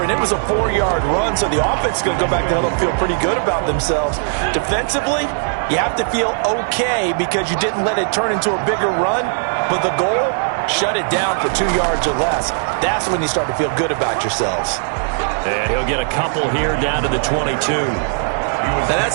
it was a 4-yard run, so the offense is going to go back to huddle and feel pretty good about themselves. Defensively, you have to feel okay because you didn't let it turn into a bigger run, but the goal, shut it down for 2 yards or less. That's when you start to feel good about yourselves. And he'll get a couple here down to the 22. Now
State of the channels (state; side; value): silent; left; digital silence